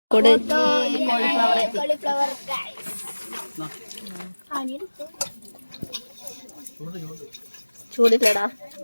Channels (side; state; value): both; inverted; correlation -1.00